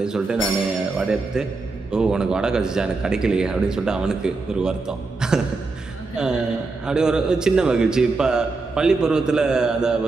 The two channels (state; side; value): quieter; left; 3.8 dB